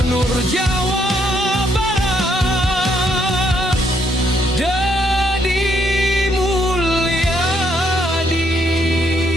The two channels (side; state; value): both; normal; correlation 0.73